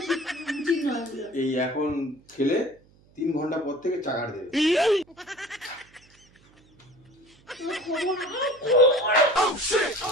উচিত নয়। এই এখন খেলে 3 ঘন্টা পর থেকে চাগার দেবে।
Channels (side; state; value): right; noise; hum, 30 dB below the sound